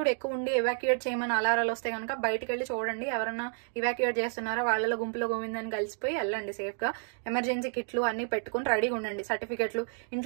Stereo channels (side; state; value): left; silent; 57 dB below the other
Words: ఎక్కువ ఉండి ఎవాక్యుయేట్ చేయమని అలారాలు వస్తే కనుక బయటకు వెళ్ళి చూడండి. ఎవరన్నా ఇవాక్యుయేట్ చేస్తున్నారా, వాళ్ళలో గుంపులో గోవిందని కలిసిపోయి వెళ్ళండి సేఫ్ గా. ఎమర్జెన్సీ కిట్లు అన్ని పెట్టుకుని రెడీగా ఉండండి. సర్టిఫికెట్లు